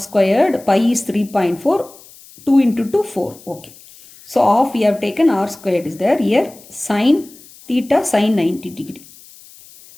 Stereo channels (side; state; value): left; noise; hiss, 23 dB below the sound